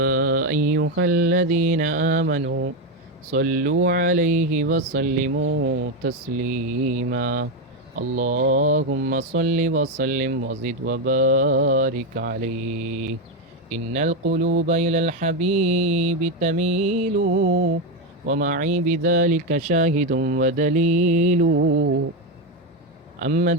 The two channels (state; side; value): normal; both; correlation 0.09